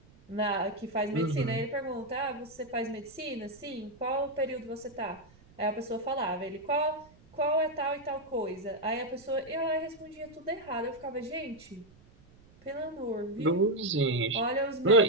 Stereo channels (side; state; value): right; noise; rumble, 26 dB below the sound